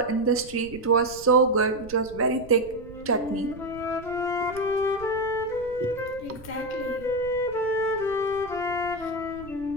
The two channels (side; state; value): right; noise; rumble, 19 dB below the sound